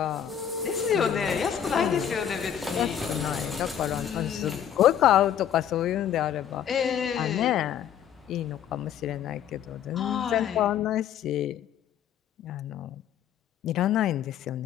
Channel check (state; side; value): quieter; right; 9.4 dB